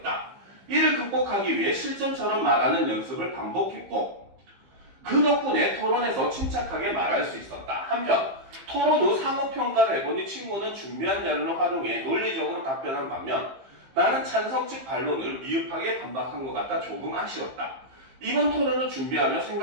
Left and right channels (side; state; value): left; late; 15 ms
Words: 이를 극복하기 위해 실전처럼 말하는 연습을 반복했고, 그 덕분에 토론에서 침착하게 말할 수 있었다. 한편 토론 후 상호평가를 해보니 친구는 준비한 자료를 활용해 논리적으로 답변한 반면 나는 찬성 측 반론을 미흡하게 반박한 것 같아 조금 아쉬웠다. 이번 토론을 준비하며